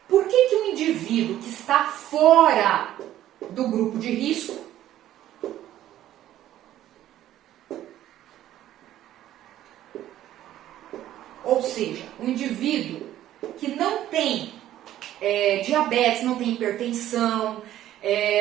Por que que o indivíduo que está fora do grupo de risco ou seja, o indivíduo que não tem diabetes, não tem hipertensão,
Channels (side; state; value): left; quieter; 12.8 dB